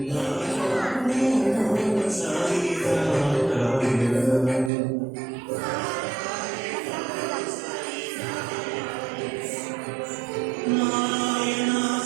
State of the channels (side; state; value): left; drops out; at 4.7 s